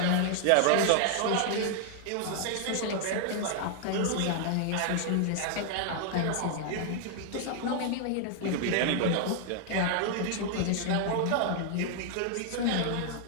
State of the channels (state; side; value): different; both; correlation 0.00